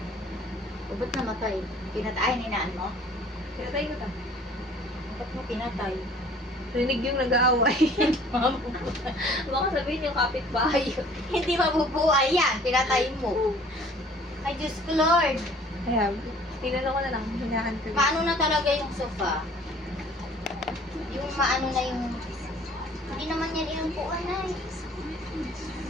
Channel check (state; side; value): normal; both; correlation 0.53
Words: O, ba't namatay? Pinatay ni naan mo? Pinatay ko ta. Ba't mo pinatay? Rinig yung nag-aaway. Baka sabihin yung kapitbahay yun. Hindi mabubuhay yan. Pinatay mo. Ay, Diyos ko, Lord. Kaya, tinanong ko na lang, hinahan ko. Paano na talaga yung sofa? Yung maano na yung... Hindi naman yan inupuan na eh.